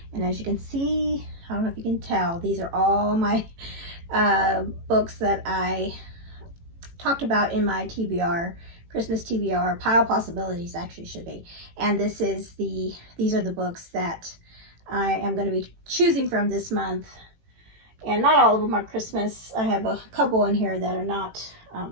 And as you can see, I don't know if you can tell, these are all my books that I talked about in my TBR, Christmas TBR, Pile of Possibilities actually should be. And these are the books that I am going to be choosing from this month. And not all of them are Christmas. I have a couple in here that are not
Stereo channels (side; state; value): left; late; 18 ms